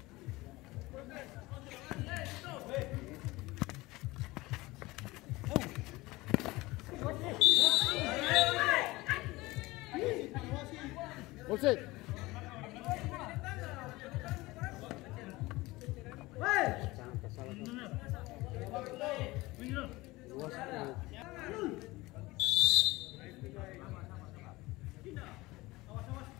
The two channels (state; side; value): quieter; right; 20.6 dB